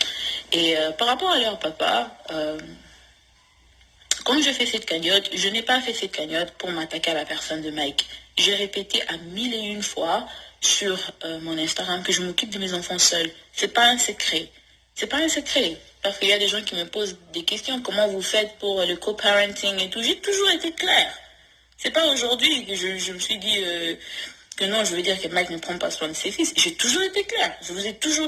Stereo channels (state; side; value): identical; both; correlation 1.00